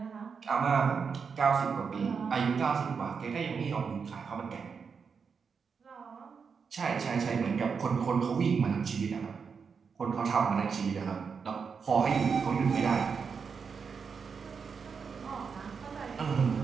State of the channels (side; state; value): left; quieter; 5.8 dB